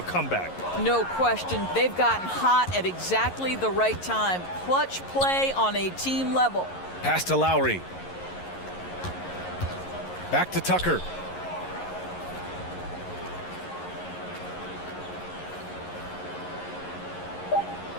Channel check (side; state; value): right; late; 11 ms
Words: comeback. No question. They've gotten hot at exactly the right time. Clutch play on a team level. Pass to Lowry. Back to Tucker.